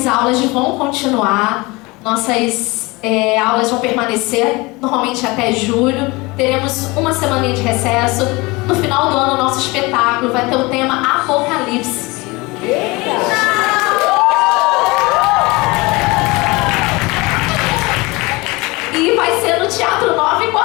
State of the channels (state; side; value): quieter; right; 23.8 dB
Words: aulas vão continuar. Nossas aulas vão permanecer normalmente até julho. Teremos uma semaninha de recesso. No final do ano, nosso espetáculo vai ter o tema Apocalipse. E vai ser no Teatro Nova